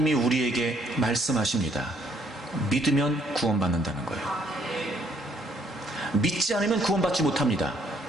우리에게 말씀하십니다. 믿으면 구원받는다는 거예요. 믿지 않으면 구원받지 못합니다.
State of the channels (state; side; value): normal; both; correlation 0.67